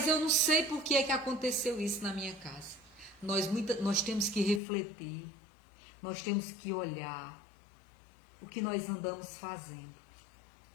eu não sei por que é que aconteceu isso na minha casa. Nós temos que refletir, nós temos que olhar o que nós andamos fazendo,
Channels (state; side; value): drops out; right; at 4.6 s